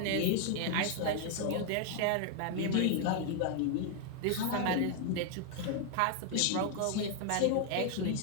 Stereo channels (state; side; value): different; both; correlation 0.00